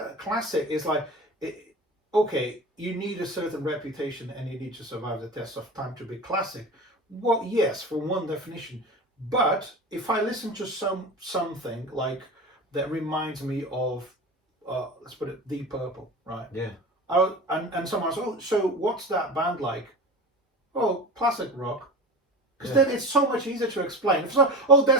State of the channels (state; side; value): normal; both; correlation 0.32